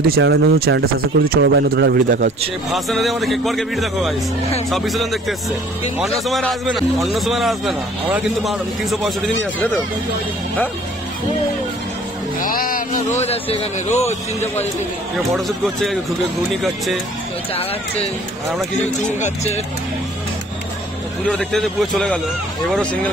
দিই, চ্যানেলটা সাবস্ক্রাইব করে দিই। চলো ভাই নতুন একটা ভিডিও দেখা হচ্ছে। ভাষণে আমাদের কেকবারকে ভিডিও দেখো গাইস, সব বিসর্জন দেখতে এসছে। অন্য সময় আসবে না, আমরা কিন্তু 365 দিনই আসবে তো। হ্যাঁ আমরা রোজ আসছি এখানে, রোজ 365 দিন। কেউ ফটোশুট করছে, ঘুগনি খাচ্ছে, চা খাচ্ছে, আর আমরা কিছু চুন খাচ্ছে। পুজো দেখতে দেখতে পুরো চলে গেল। এবারও সিঙ্গেল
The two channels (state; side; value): normal; both; correlation 0.53